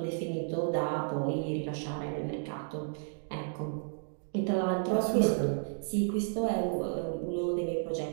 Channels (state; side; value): silent; left; digital silence